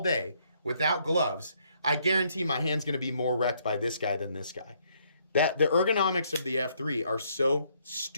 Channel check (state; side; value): inverted; both; correlation -0.69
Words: without gloves. I guarantee my hand's going to be more wrecked by this guy than this guy. That the ergonomics of the F3 are so